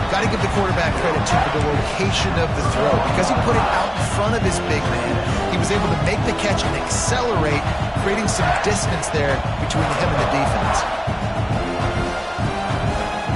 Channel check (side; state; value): both; identical; correlation 1.00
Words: got to give the quarterback credit, too, for the location of the throw. Because he put it out in front of his big man, he was able to make the catch and accelerate, creating some distance there between him and the defense.